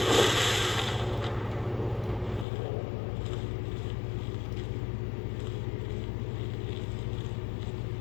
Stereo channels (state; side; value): drops out; right; at 2.5 s